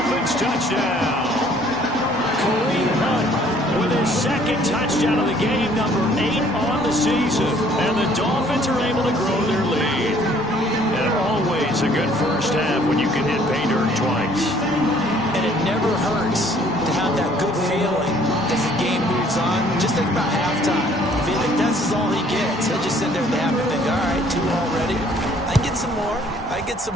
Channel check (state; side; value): normal; both; correlation 0.59